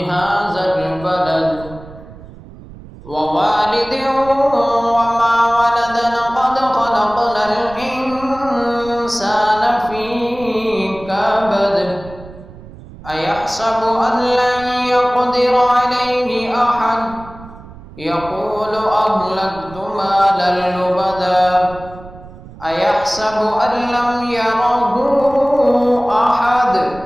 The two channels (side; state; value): right; noise; rumble, 18 dB below the sound